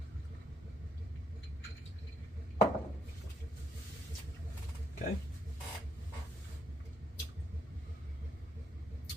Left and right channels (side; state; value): both; normal; correlation 0.74